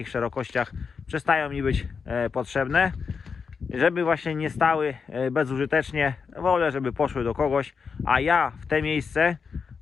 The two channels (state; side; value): quieter; right; 5.7 dB